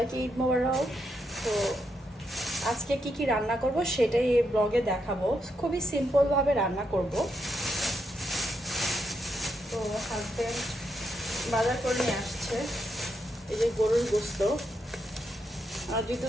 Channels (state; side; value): normal; both; correlation 0.81